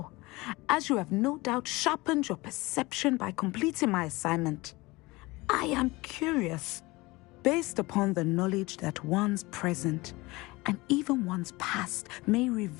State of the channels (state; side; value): quieter; right; 22.2 dB